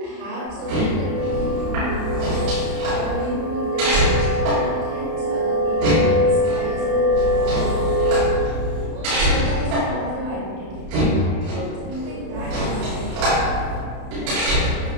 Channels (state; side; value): late; left; 32 ms